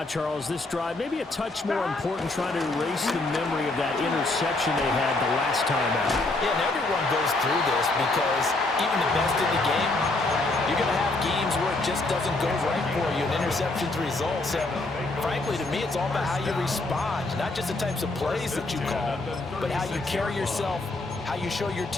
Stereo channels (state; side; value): quieter; right; 3.0 dB